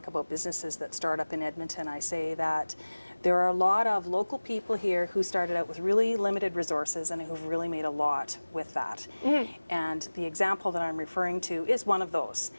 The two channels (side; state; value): both; inverted; correlation -1.00